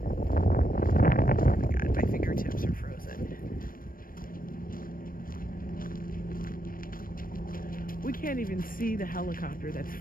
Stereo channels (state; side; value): late; right; 0.41 ms